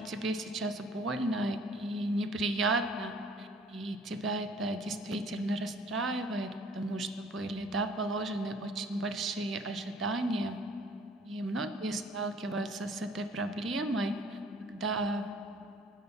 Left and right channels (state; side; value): normal; both; correlation 0.55